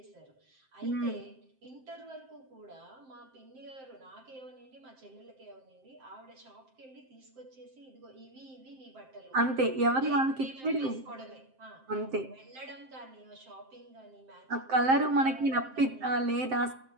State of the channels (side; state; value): left; late; 7.6 ms